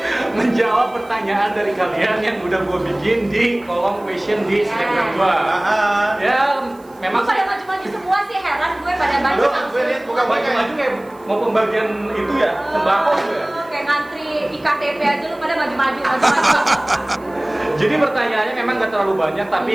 Menjawab pertanyaan dari kalian yang udah gue bikin di kolom question di Instagram gue. Ya, memang Lu pada maju-maju semua sih, heran gue pada maju. Lu gue lihat bukan maju kayak mau pembagian itu ya, sembako gitu ya. Kayak ngantri IKTP aja lu pada maju-maju. Jadi pertanyaannya memang gak terlalu banyak,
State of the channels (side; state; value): right; noise; hiss, 29 dB below the sound